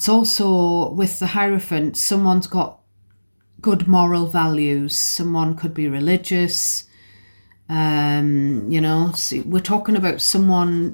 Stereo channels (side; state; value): both; inverted; correlation -1.00